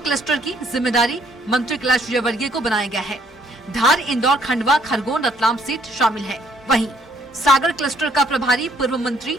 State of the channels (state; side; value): normal; both; correlation 0.66